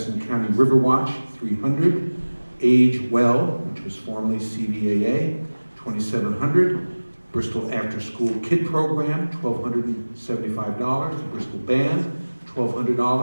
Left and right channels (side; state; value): both; inverted; correlation -1.00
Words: County Riverwatch, $300. Age Well, which was formerly CVAA, $2,700. Bristol After School Kid Program, $1,275. Bristol Band,